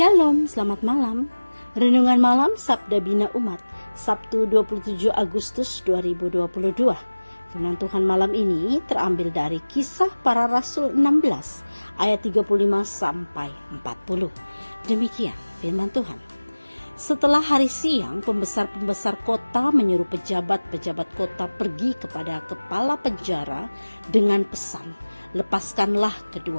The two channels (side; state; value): both; inverted; correlation -1.00